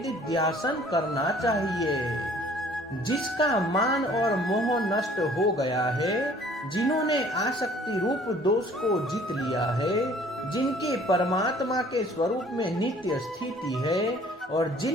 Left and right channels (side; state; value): both; normal; correlation 0.54